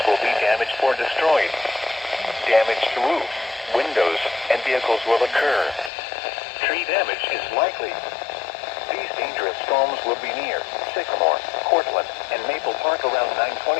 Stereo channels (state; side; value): drops out; right; at 5.9 s